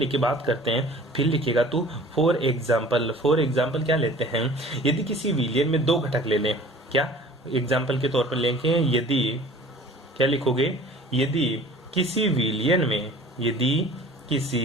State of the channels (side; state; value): both; normal; correlation 0.46